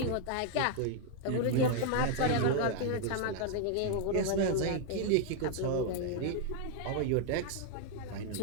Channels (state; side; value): different; both; correlation 0.00